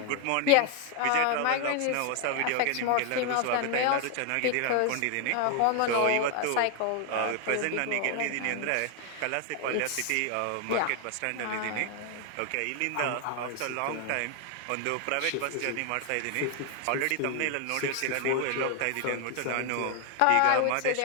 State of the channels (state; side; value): different; both; correlation 0.00